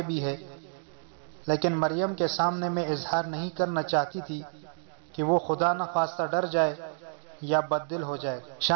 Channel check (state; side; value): silent; left; digital silence